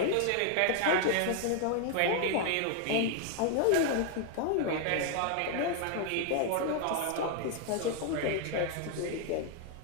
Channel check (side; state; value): both; different; correlation 0.00